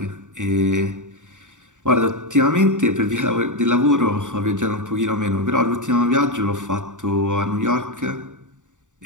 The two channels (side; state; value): left; late; 0.86 ms